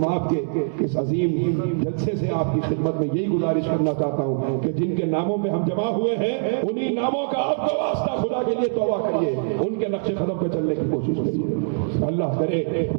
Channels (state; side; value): silent; left; digital silence